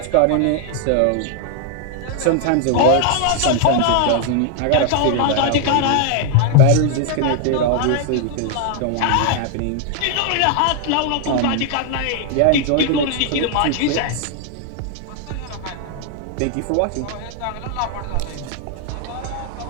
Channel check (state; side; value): different; both; correlation 0.00